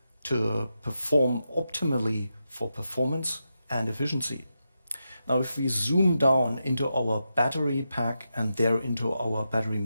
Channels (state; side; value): inverted; both; correlation -0.88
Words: to perform optimally for performance and efficiency. Now, if we zoom down into our battery pack and there into our battery